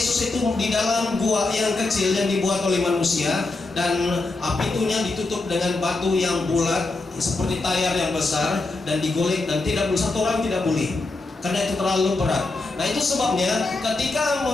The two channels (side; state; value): right; quieter; 3.3 dB